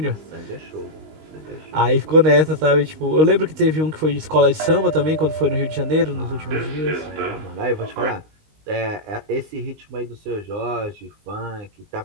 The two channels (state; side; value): late; left; 19 ms